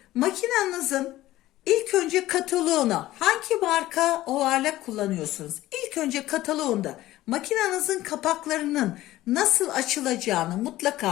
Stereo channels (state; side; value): quieter; right; 15.8 dB